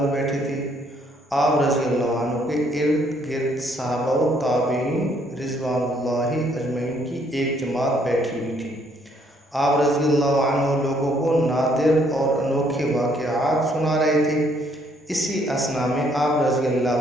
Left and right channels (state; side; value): normal; both; correlation 0.67